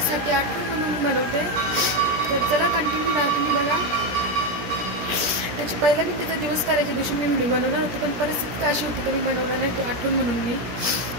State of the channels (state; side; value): late; left; 17 ms